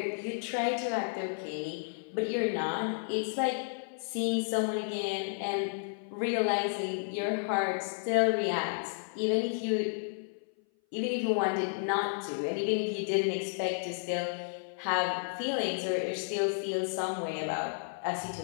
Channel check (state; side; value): silent; right; 56 dB below the other